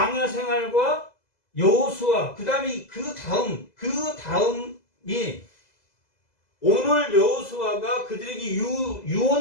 생활과 여호수아 그 다음이 그 다음이 오늘 여호수아가 그들에게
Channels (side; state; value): right; late; 2.0 ms